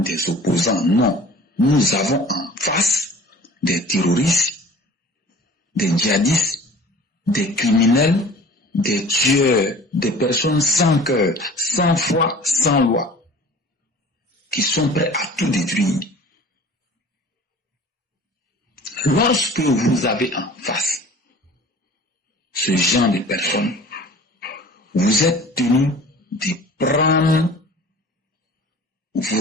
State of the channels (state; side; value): normal; both; correlation 0.45